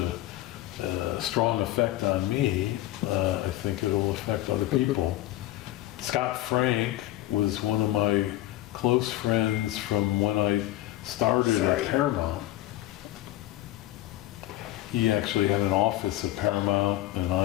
strong effect on me, I think it'll affect other people. Scott Frank was one of my close friends from when I started at Paramount. He actually had an office at Paramount, and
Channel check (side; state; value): right; quieter; 15.4 dB